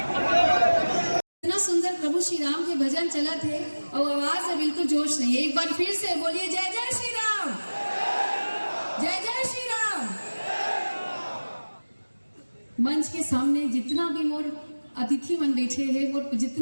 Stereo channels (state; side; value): inverted; both; correlation -1.00